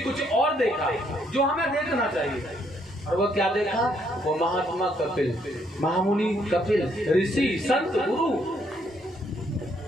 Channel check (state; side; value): normal; both; correlation 0.71